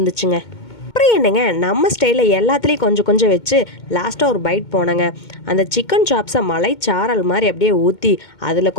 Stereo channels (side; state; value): right; late; 2.2 ms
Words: அப்புறம் என்னங்க, நம்ம ஸ்டைலில் எல்லாத்துலேயும் கொஞ்சம் கொஞ்சம் வச்சு லாஸ்ட்டாக ஒரு பைட் போனேங்க. அந்த சிக்கன் சாப்ஸை மலைச்சாரல் மாதிரி அப்படியே ஊற்றி அதில்